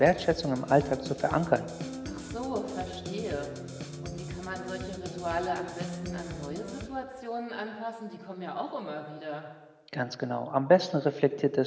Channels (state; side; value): identical; both; correlation 1.00